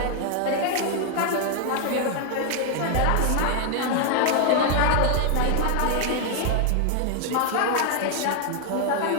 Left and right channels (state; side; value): different; both; correlation 0.00